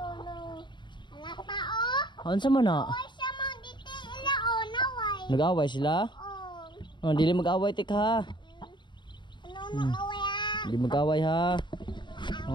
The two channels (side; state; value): right; late; 0.22 ms